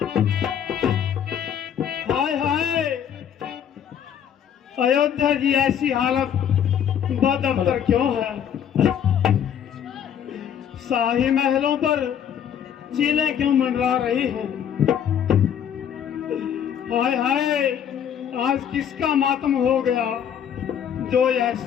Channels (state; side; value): quieter; right; 8.9 dB